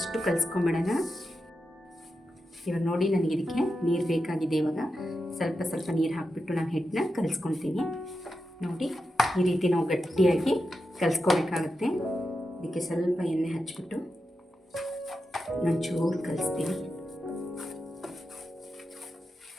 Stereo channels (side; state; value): both; normal; correlation 0.89